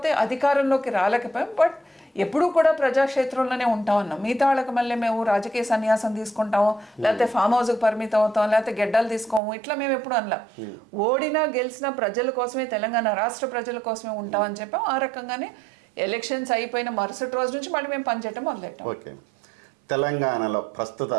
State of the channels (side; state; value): left; drops out; at 9.4 s